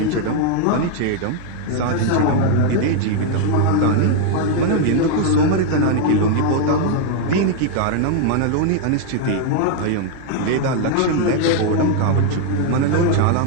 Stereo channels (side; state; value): both; different; correlation 0.00